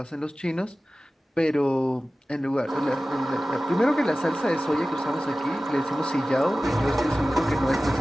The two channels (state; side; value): normal; both; correlation 0.96